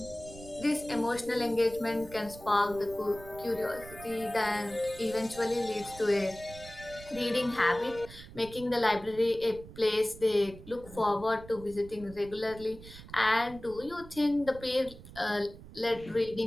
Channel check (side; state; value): right; noise; rumble, 17 dB below the sound